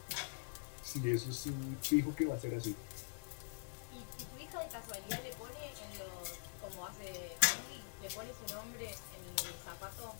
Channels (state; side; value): silent; right; digital silence